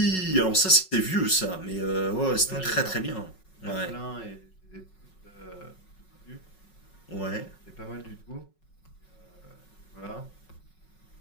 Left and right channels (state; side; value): late; right; 5.4 ms